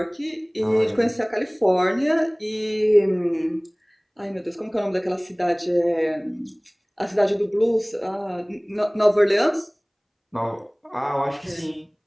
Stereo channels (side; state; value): both; identical; correlation 1.00